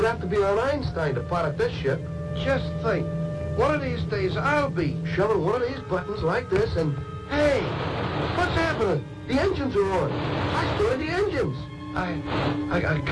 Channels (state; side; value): identical; both; correlation 1.00